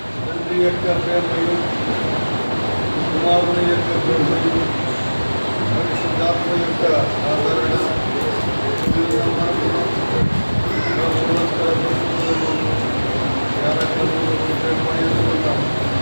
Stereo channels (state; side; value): inverted; both; correlation -1.00